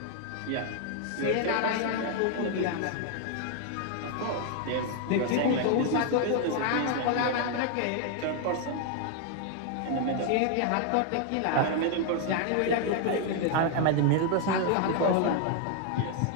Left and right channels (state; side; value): different; both; correlation 0.00